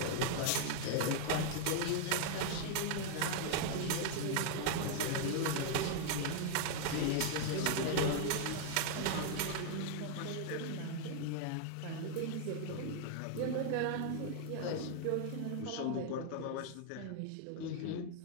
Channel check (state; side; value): different; both; correlation 0.00